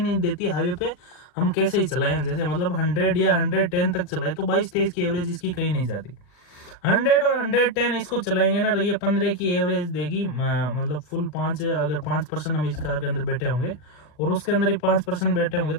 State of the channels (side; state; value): right; late; 40 ms